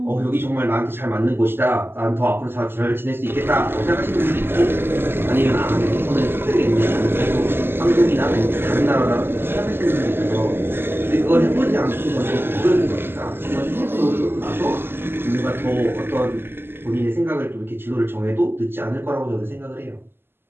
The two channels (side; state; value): left; late; 0.11 ms